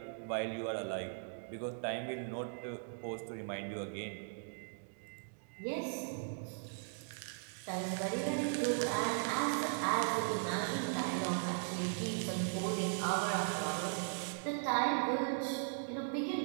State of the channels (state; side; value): silent; left; digital silence